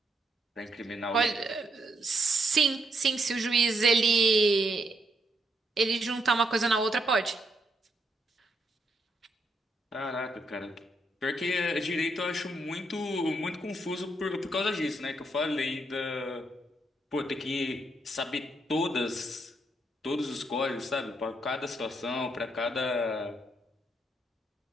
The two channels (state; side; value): normal; both; correlation 0.76